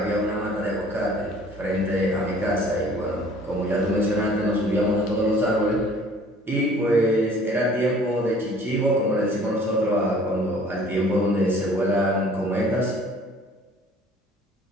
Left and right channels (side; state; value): both; normal; correlation 0.52